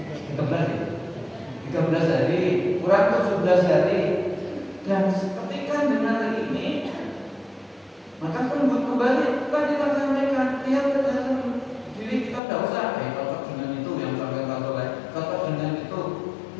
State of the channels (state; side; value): drops out; right; at 12.4 s